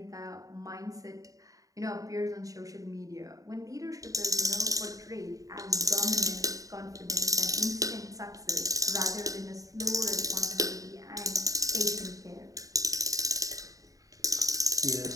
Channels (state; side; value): late; left; 0.16 ms